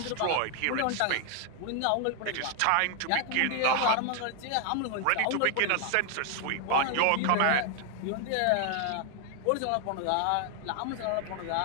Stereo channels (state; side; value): different; both; correlation 0.00